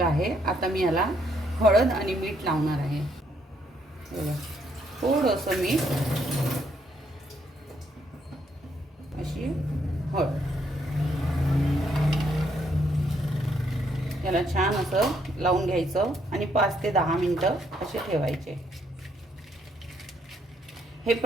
आहे. आता मी याला हळद आणि मीठ लावणार आहे. बघा, थोडंसं मीठ, अशी हळद. याला छान असं लावून घ्यायचं आणि 5 ते 10 मिनिटं असे ठेवायचे. हे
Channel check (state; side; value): normal; both; correlation 0.72